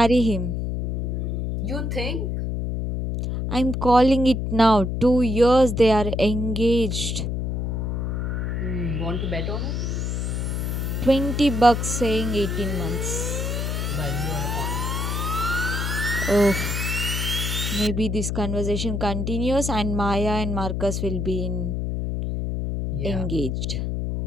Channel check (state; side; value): noise; left; hum, 1 dB below the sound